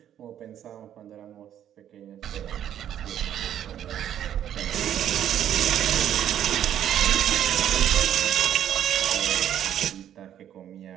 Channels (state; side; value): quieter; left; 10.4 dB